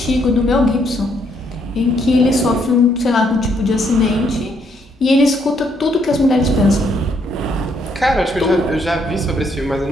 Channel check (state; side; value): normal; both; correlation 0.72